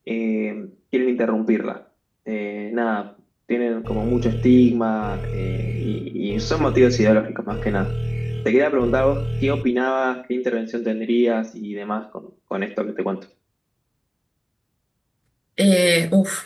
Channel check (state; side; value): identical; both; correlation 1.00